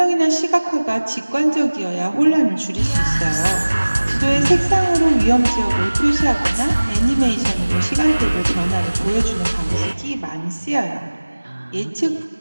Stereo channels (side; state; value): both; inverted; correlation -1.00